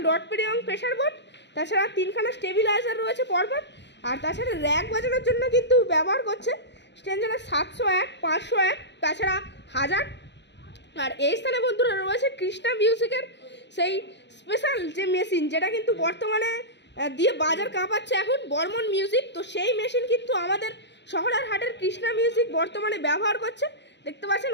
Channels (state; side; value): late; right; 0.51 ms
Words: ডট পিডি এবং প্রেশার বোর্ড। তাছাড়া 3খানা স্টেবিলাইজার রয়েছে পরপর। আর তাছাড়া র্যাক বাজানোর জন্য কিন্তু ব্যবহার করছে স্ট্যান্ডার্ড 701, 501, তাছাড়া 1000। আর এই স্থানে বন্ধুরা রয়েছে কৃষ্ণা মিউজিকের সেই স্পেশাল যে মেশিন যেটা কিন্তু বর্তমানে দিয়ে বাজার কাঁপাচ্ছে এখন বর্মন মিউজিক। তো সেই মেশিন কিন্তু আমাদের শহরের হাটের কৃষ্ণা মিউজিক বর্তমানে ব্যবহার করছে। দেখতে পাচ্ছেন